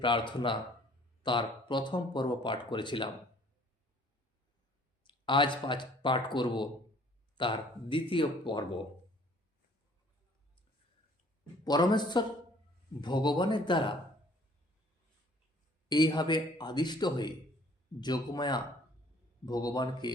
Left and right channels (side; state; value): both; normal; correlation 0.56